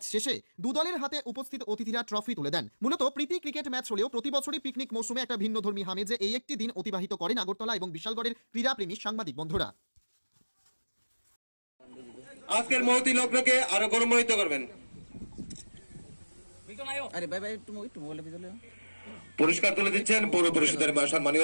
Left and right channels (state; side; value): inverted; both; correlation -1.00